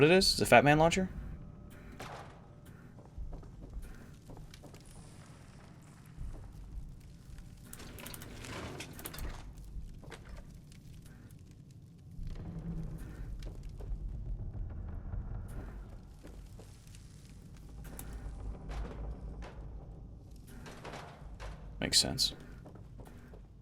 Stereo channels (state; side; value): identical; both; correlation 1.00